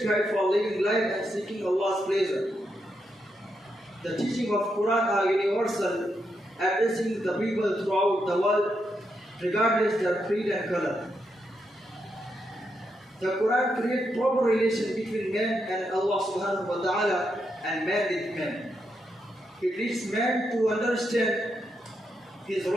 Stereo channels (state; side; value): normal; both; correlation 0.82